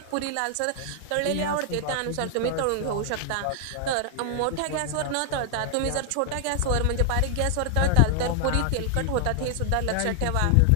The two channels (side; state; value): both; different; correlation 0.00